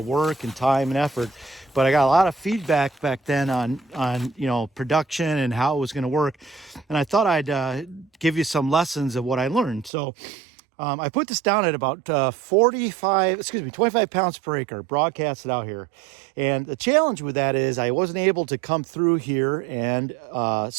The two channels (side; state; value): left; drops out; at 9.9 s